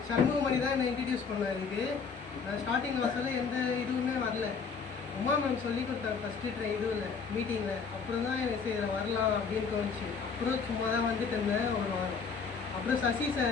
சண்முகமணி தான் என்னை இன்ட்ரடியூஸ் பண்ணேன். இதுக்கு நான் ஸ்டார்டிங் கிளாஸில் எந்த இதுவுமே வரல. உமா மேம் சொல்லி கொடுத்தாங்க ஃபஸ்ட்டு இதுவில் மீட்டிங்கில். அப்புறம் தான் எனக்கு இதில் வரலாம் அப்படின்னு தோணுச்சு. அப்புறம் சும்மா தான் வந்துட்டு இருந்தேன் ஒரு வாரம். அப்புறம் சசி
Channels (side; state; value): right; quieter; 5.6 dB